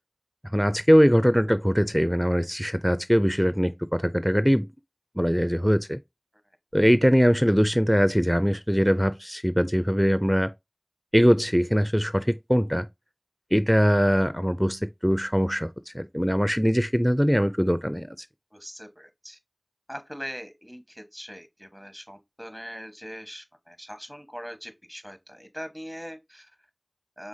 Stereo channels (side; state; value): both; identical; correlation 1.00